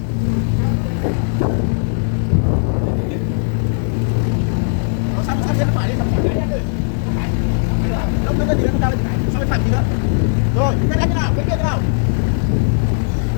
Rồi, cái này thế nào? Cái kia thế nào?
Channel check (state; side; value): silent; right; digital silence